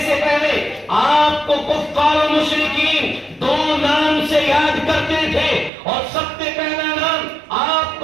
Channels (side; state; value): left; drops out; at 5.7 s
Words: سے پہلے آپ کو کفار و مشرکین دو نام سے یاد کرتے تھے، اور سب سے پہلا نام آپ